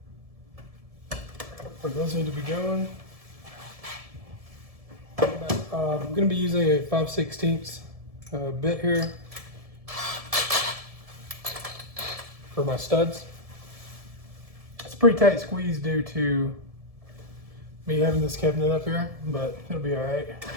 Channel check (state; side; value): late; left; 1.7 ms